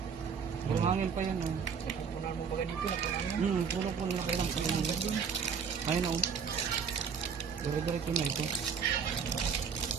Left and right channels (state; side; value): quieter; left; 6.5 dB